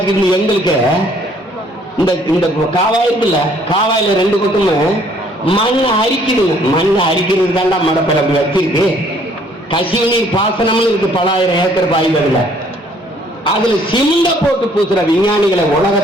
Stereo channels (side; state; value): both; normal; correlation 0.62